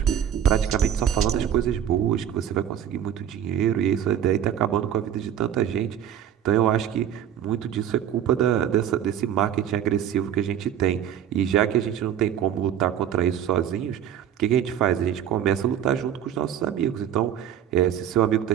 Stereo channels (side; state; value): left; quieter; 9.7 dB